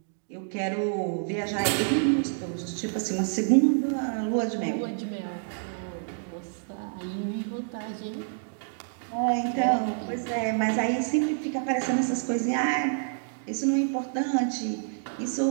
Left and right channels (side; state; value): left; silent; digital silence